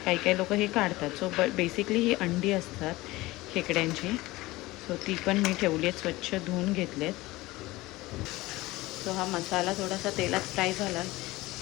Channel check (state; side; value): quieter; right; 19.6 dB